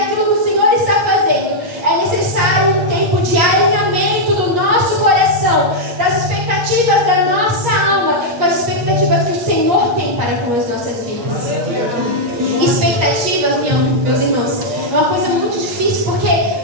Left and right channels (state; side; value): late; left; 8.4 ms